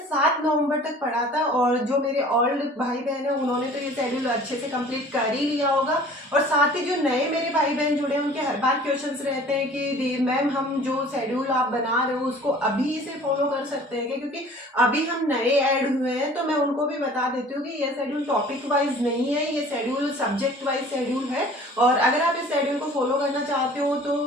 7 नवंबर तक पढ़ा था। और जो मेरे ओल्ड भाई बहन है उन्होंने तो ये शेड्यूल अच्छे से कंप्लीट कर ही लिया होगा। और साथ ही जो नए मेरे भाई बहन जुड़े हैं उनके हर बार क्वेश्चंस रहते हैं कि मैम हम जो शेड्यूल आप बना रहे हो उसको अभी से फॉलो कर सकते हैं क्या, क्योंकि अभी हम नए ऐड हुए हैं। तो मैं उनको भी बता देती हूँ कि ये शेड्यूल टॉपिक वाइज नहीं है, ये शेड्यूल सब्जेक्ट वाइज शेड्यूल है। और अगर आप इस शेड्यूल को फॉलो करना चाहते हो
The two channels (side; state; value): both; normal; correlation 0.48